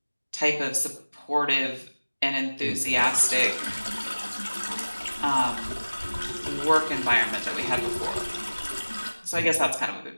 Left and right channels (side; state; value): both; inverted; correlation -1.00